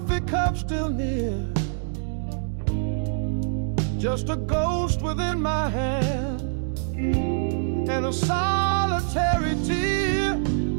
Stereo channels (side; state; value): left; silent; digital silence